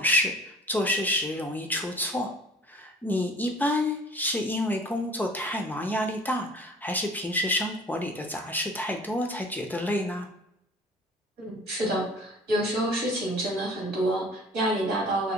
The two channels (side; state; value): both; normal; correlation 0.48